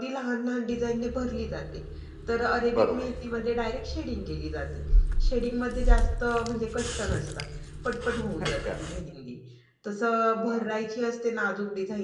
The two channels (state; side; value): identical; both; correlation 1.00